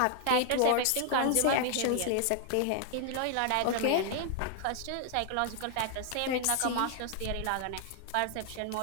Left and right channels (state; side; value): different; both; correlation 0.00